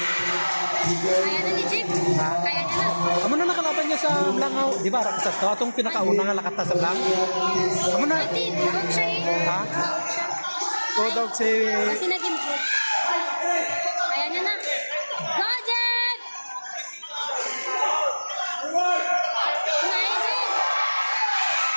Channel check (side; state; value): both; inverted; correlation -1.00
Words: na ni Jib. Kaya niya na. Amo na nakalaban niya sa Langaw. Di ba? Rakasat to. Atong pinakauna nga lakata sa Langaw. Amo na. Ati, huwag siya eh. Ha? O dog si... Kasi nag-improve. Kaya niya na. Go, Jib! Nice, Jib!